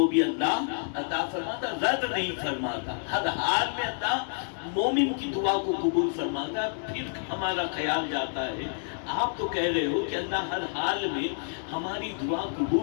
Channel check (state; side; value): silent; right; digital silence